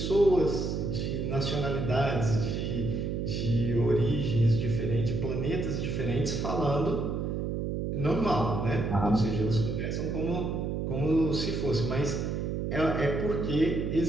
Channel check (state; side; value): noise; right; hum, 2 dB below the sound